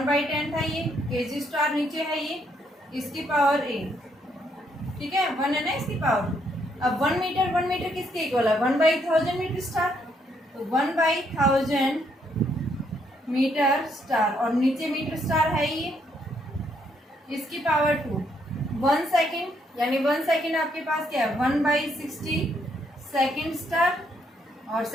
था ये, केजी स्टार नीचे है ये, इसकी पावर A, ठीक है, 1 है ना इसकी पावर। अब 1 मीटर किसके इक्वल है, 1/1000 मीटर स्टार, तो 1/1000 मीटर स्टार, और नीचे मीटर स्टार है ये, इसकी पावर 2। 1 सेकेंड यानी 1 सेकेंड आपके पास क्या है, 1/60 सेकेंड स्टार, और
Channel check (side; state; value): both; normal; correlation 0.73